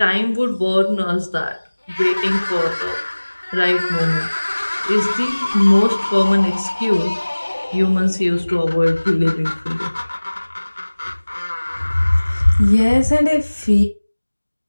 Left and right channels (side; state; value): both; inverted; correlation -1.00